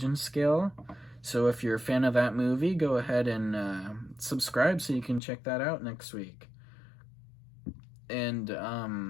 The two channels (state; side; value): drops out; right; at 5.2 s